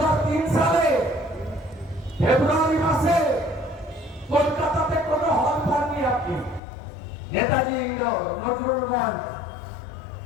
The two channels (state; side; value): drops out; right; at 6.6 s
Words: সালে ফেব্রুয়ারি মাসে কলকাতাতে কোন হল পাননি আপনি। নেতাজি নজরুল মঞ্চ,